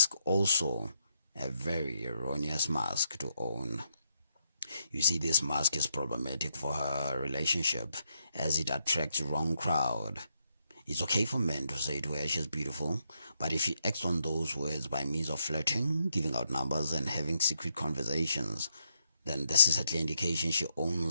also, a very erroneous mask to own. You see, this mask is problematic for her relationship as it attracts wrong crowd. It's okay for men to say to her she's beautiful, but if she acts on those words by means of flirting, giving out numbers and having secret conversations, then this is a clear indication she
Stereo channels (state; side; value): inverted; both; correlation -0.79